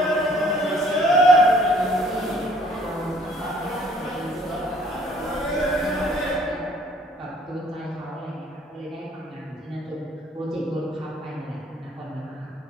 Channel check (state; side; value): normal; both; correlation 0.59